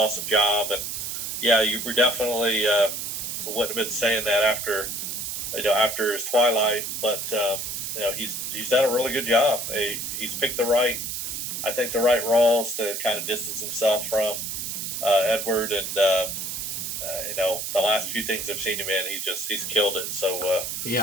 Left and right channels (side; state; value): right; noise; hiss, 4 dB below the sound